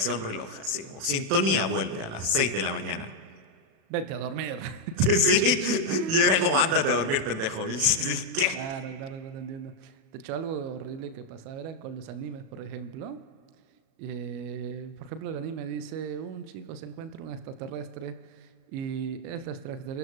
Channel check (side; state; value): left; late; 37 ms